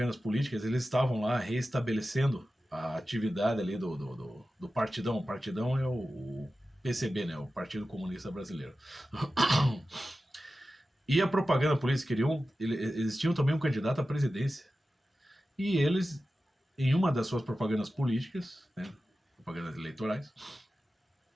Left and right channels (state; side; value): normal; both; correlation 0.94